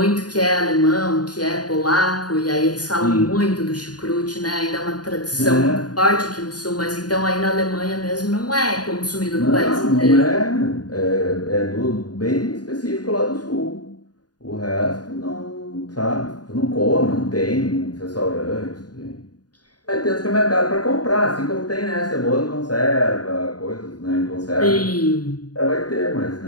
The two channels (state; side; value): late; right; 0.69 ms